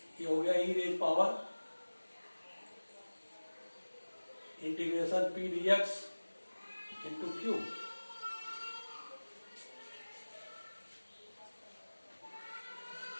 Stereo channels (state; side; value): inverted; both; correlation -1.00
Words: ये हो गया e raise power integration p dx into q.